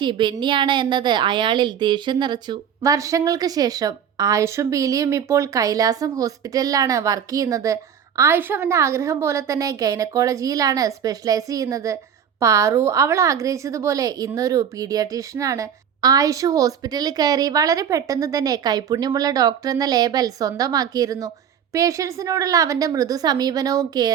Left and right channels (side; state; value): left; quieter; 8.4 dB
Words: ബെന്നിയാണ് എന്നത് അയാളിൽ ദേഷ്യം നിറച്ചു. വർഷങ്ങൾക്ക് ശേഷം ആയുഷും പീലിയും ഇപ്പോൾ കൈലാസം ഹോസ്പിറ്റലിലാണ് വർക്ക് ചെയ്യുന്നത്. ആയുഷ് അവൻ്റെ ആഗ്രഹം പോലെ തന്നെ ഗൈനക്കോളജിയിലാണ് സ്പെഷ്യലൈസ് ചെയ്യുന്നത്. പാറു അവൾ ആഗ്രഹിച്ചതുപോലെ ഇന്നൊരു പീഡിയാട്രീഷ്യനാണ്. ആയുഷ് ഹോസ്പിറ്റലിൽ കയറി വളരെ പെട്ടെന്ന് തന്നെ കൈപുണ്യമുള്ള ഡോക്ടർ എന്ന ലേബൽ സ്വന്തമാക്കിയിരുന്നു. പേഷ്യൻസിനോടുള്ള അവൻ്റെ മൃദു സമീപനവും